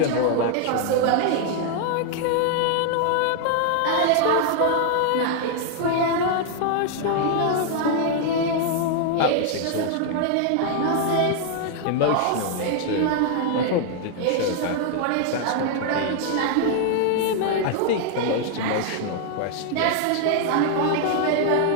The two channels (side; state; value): both; different; correlation 0.00